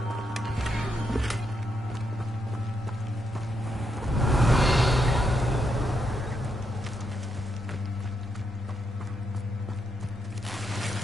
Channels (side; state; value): both; normal; correlation 0.80